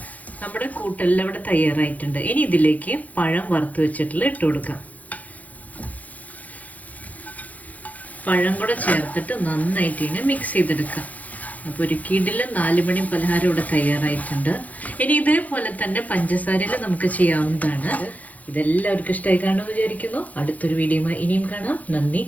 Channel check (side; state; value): right; late; 0.076 ms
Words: നമ്മുടെ കൂട്ടെല്ലാം ഇവിടെ തയ്യാറായിട്ടുണ്ട്. ഇനി ഇതിലേക്ക് പഴം വറുത്ത് വെച്ചിട്ടുള്ള ഇട്ട് കൊടുക്കാം. പഴം കൂടെ ചേർത്തിട്ട് നന്നായിട്ട് ഇതിനെ മിക്സ് ചെയ്തെടുക്കാം. അപ്പോൾ ഒരു കിടിലൻ 4 മണി പലഹാരം ഇവിടെ തയ്യാറായിട്ടുണ്ട്. ഇനി ഇതേപോലെ തന്നെ പഞ്ചസാരയിൽ നമുക്ക് ചെയ്യാവുന്നതാണ്. ഇതെല്ലാവർക്കും ഇഷ്ടമായി കാണുമെന്ന് വിചാരിക്കുന്നു. അടുത്തൊരു വീഡിയോയുമായി ഇനിയും കാണാം. നന്ദി,